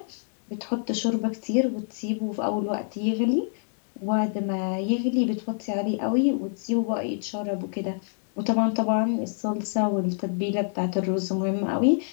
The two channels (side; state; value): right; silent; digital silence